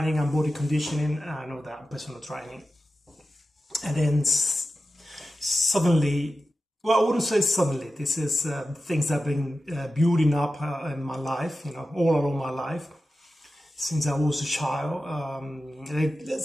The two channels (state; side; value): normal; both; correlation 0.93